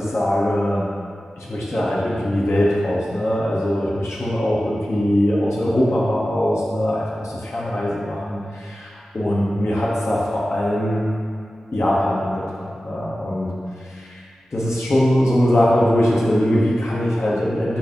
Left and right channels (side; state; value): both; normal; correlation 0.94